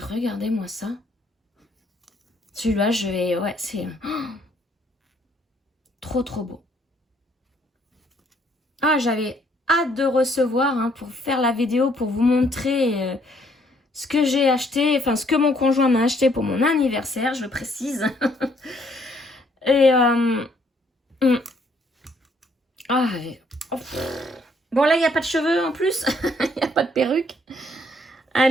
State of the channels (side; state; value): both; normal; correlation 0.66